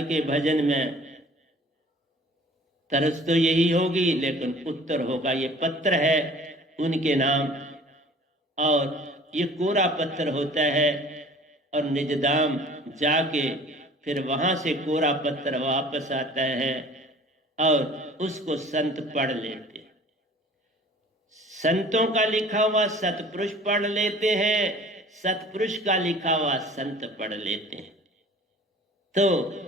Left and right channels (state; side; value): normal; both; correlation 0.48